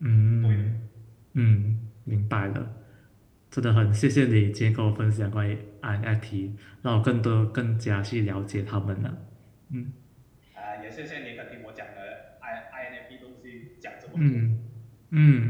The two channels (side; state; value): both; identical; correlation 1.00